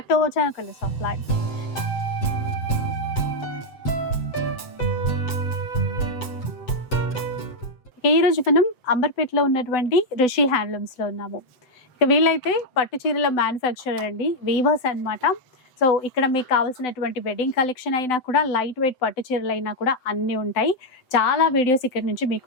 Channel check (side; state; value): right; late; 7.9 ms